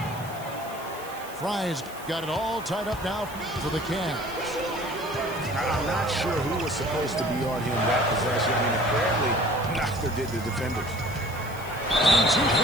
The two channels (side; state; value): right; noise; hiss, 18 dB below the sound